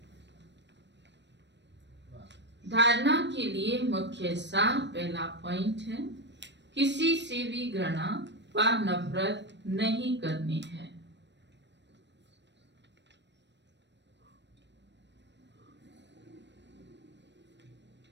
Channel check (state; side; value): late; left; 0.52 ms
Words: धारणा के लिए मुख्य सार पहला पॉइंट है, किसी से भी घृणा व नफरत नहीं करनी है।